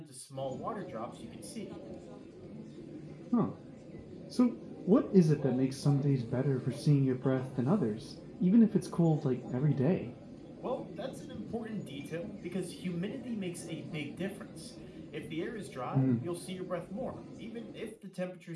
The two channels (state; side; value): identical; both; correlation 1.00